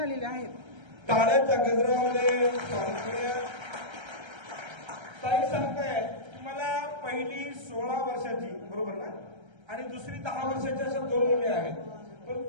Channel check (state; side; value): late; left; 1.3 ms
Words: आहेत. टाळ्याच्या गजरामध्ये ताई सांगताय मला पहिली 16 वर्षाची बरोबर ना आणि दुसरी 10 वर्षाच्या अशा 2 मुली आहेत. पण